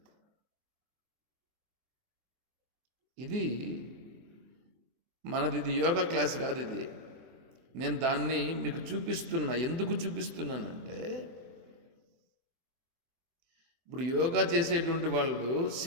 ఇది మనది యోగా క్లాస్ కాదు ఇది. నేను దాన్ని మీకు చూపిస్తున్నా. ఎందుకు చూపిస్తున్నానంటే ఇప్పుడు యోగా చేసేటువంటి వాళ్ళు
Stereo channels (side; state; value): left; late; 24 ms